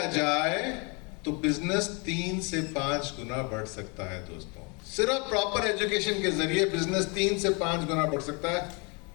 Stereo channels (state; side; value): quieter; right; 31.6 dB